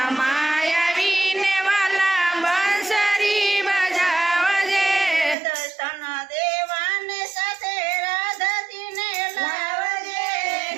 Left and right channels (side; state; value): left; drops out; at 5.4 s